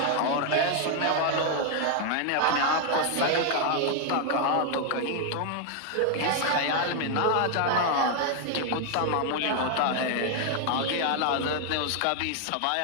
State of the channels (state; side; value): different; both; correlation 0.00